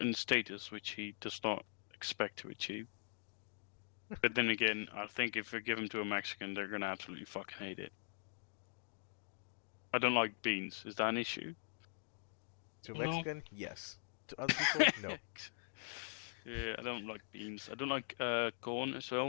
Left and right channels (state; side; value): silent; right; digital silence